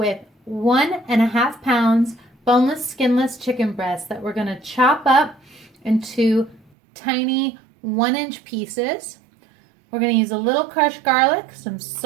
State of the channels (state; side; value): drops out; left; at 6.6 s